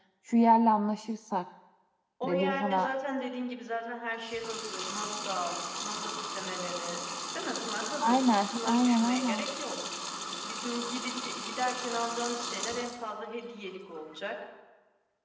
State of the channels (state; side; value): identical; both; correlation 1.00